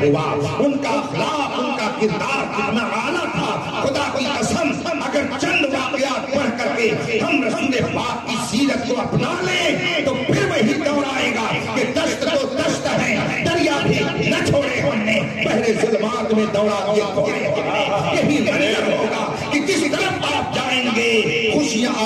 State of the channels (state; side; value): identical; both; correlation 1.00